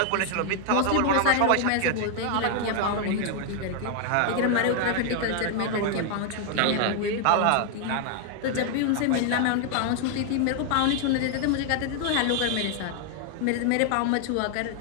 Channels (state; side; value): different; both; correlation 0.00